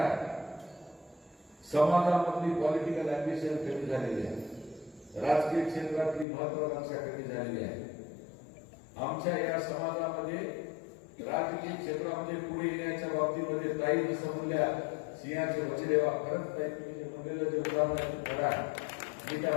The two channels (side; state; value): right; drops out; at 6.2 s